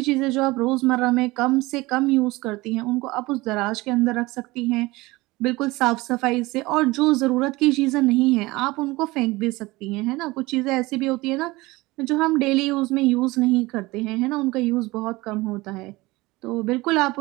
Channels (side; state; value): left; quieter; 21.2 dB